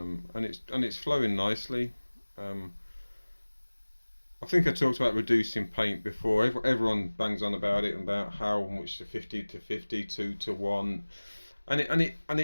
it's flowing nicely. I think I talked about reducing paint before. Everyone bangs on about it, and about how much the 50 to 50, 2 to 1. And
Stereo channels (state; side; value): inverted; both; correlation -1.00